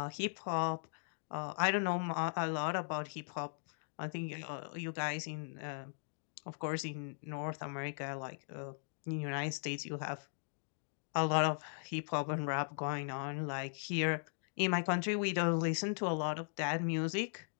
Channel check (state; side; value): silent; right; digital silence